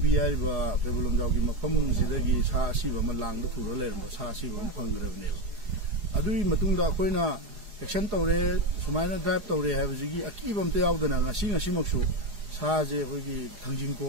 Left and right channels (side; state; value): left; late; 4.8 ms